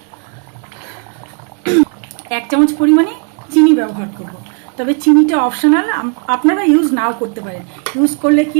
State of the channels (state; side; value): quieter; left; 38.3 dB